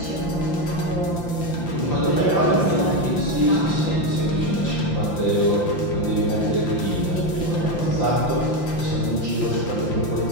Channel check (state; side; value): late; right; 5.8 ms